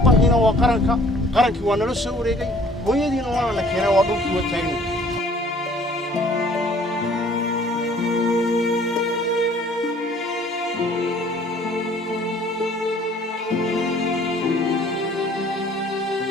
waa qarankii waa nala soo wareegay hooyadiina waa la keenay waa dhulkii waa taagna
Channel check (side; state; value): both; normal; correlation 0.55